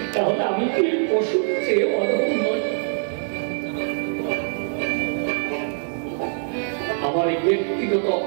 তাহলে আমি কি পশুর চেয়ে অধম নই? আমার এই ব্যক্তিগত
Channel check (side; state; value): left; silent; digital silence